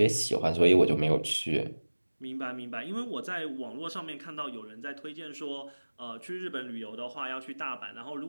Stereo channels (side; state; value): both; inverted; correlation -1.00